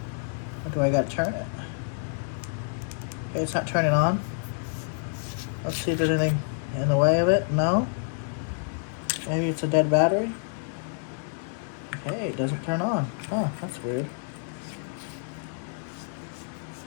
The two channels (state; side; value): silent; right; 59 dB below the other